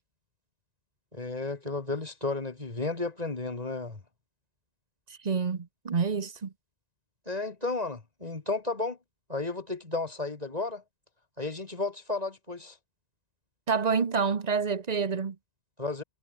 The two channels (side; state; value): left; late; 1.9 ms